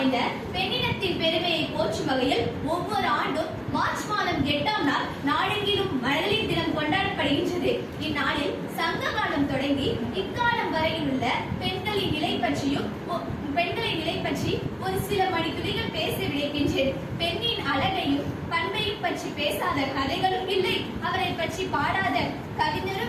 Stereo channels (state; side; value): identical; both; correlation 1.00